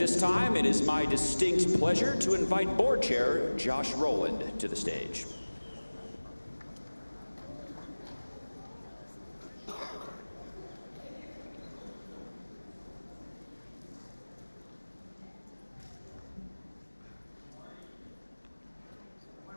time, it is my distinct pleasure to invite Board Chair Josh Rowland to the stage.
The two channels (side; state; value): both; inverted; correlation -1.00